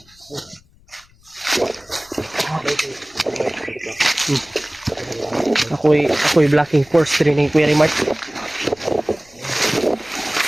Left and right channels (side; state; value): left; noise; rumble, 29 dB below the sound